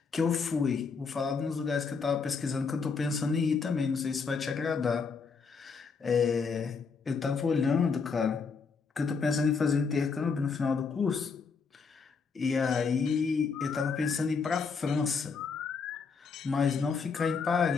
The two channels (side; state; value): right; quieter; 5.2 dB